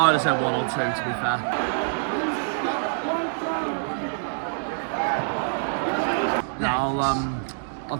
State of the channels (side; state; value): left; silent; 61 dB below the other